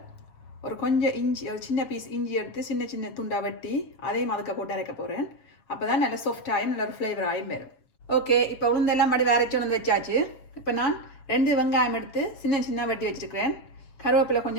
ஒரு கொஞ்சம் இஞ்சி, ஒரு சின்ன பீஸ் இஞ்சி எடுத்து சின்ன சின்ன துண்டாக வெட்டி அதையும் அதுக்க போட்டு அரைக்க போகிறேன். அப்போ தான் நல்லா சாஃப்டாயும் நல்ல ஒரு ஃப்ளேவராகவும் வரும். ஓகே, இப்போ உளுந்தெல்லாம் மடி அரைச்சி வந்து வச்சாச்சு. இப்போ நான் 2 வெங்காயம் எடுத்து சின்ன சின்ன வெட்டி வச்சுருக்கிறேன். கருவேப்பிலை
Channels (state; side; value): late; right; 7.2 ms